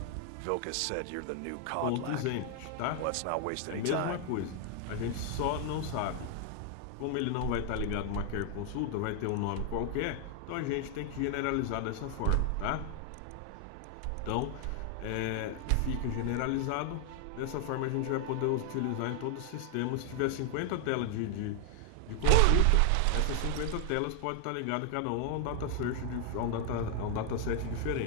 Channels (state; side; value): different; both; correlation 0.00